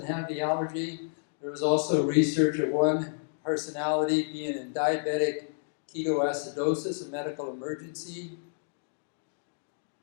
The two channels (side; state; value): right; silent; digital silence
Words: have the allergy. There was also research of one personality being in diabetic ketoacidosis, a medical emergency.